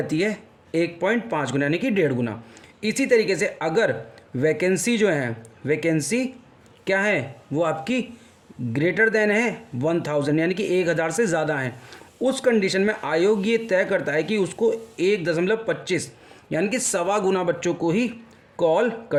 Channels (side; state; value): both; identical; correlation 1.00